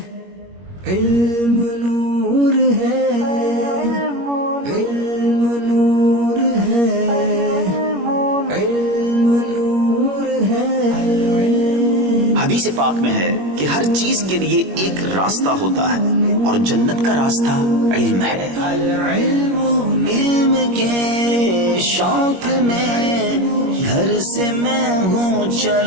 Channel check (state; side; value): late; left; 21 ms